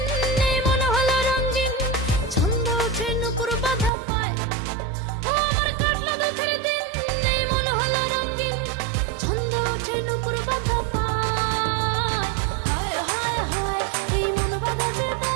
এই মন হলো রঙিন ছন্দ ওঠে নুপুর বাধা পায় ও আমার কাটলো দুঃখের দিন এই মন হলো রঙিন ছন্দ ওঠে নুপুর বাধা পায় হায় হায় হায় এই মন বাধা যে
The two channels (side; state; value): left; drops out; at 3.9 s